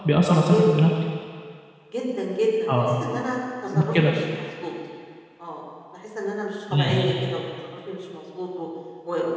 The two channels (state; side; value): identical; both; correlation 1.00